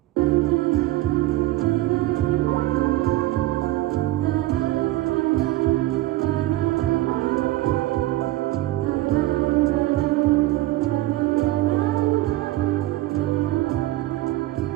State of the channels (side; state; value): left; quieter; 17.0 dB